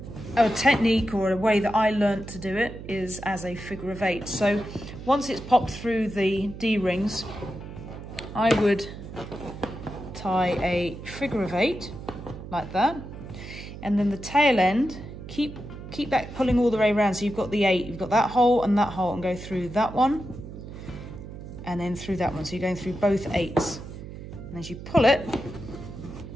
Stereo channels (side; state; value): right; noise; hum, 12 dB below the sound